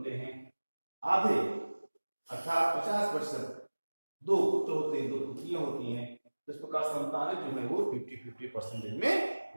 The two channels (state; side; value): inverted; both; correlation -1.00